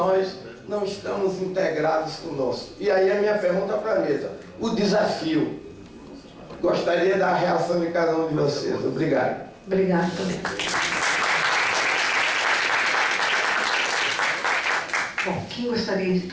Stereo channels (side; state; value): both; identical; correlation 1.00